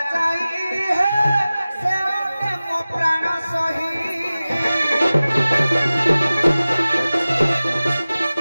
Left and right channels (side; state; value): both; inverted; correlation -0.97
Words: ଯାଇ ହେ ସେ ଅଟେ ମୋ ପ୍ରାଣ ସହି